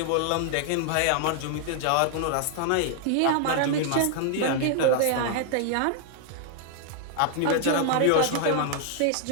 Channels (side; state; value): both; different; correlation 0.00